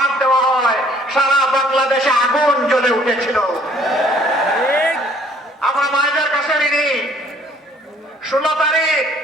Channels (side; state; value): both; normal; correlation 0.58